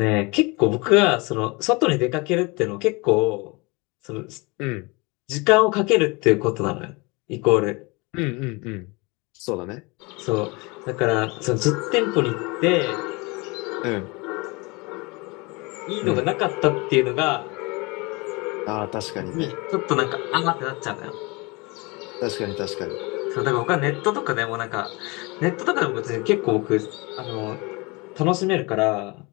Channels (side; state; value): right; quieter; 26.7 dB